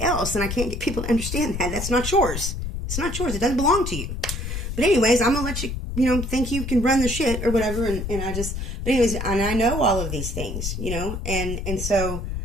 else. And I can't get people to understand that. That's not yours. It's not yours. It doesn't belong to you. But anyways, I'm going to let you, think you can run the shit or whatever. And but anyways, and I know all of these things, and so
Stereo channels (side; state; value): left; noise; rumble, 5 dB below the sound